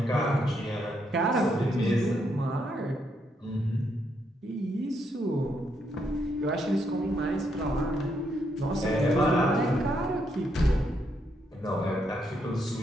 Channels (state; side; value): normal; both; correlation 0.77